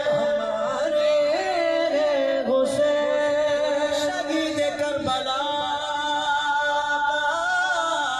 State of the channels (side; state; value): right; noise; rumble, 26 dB below the sound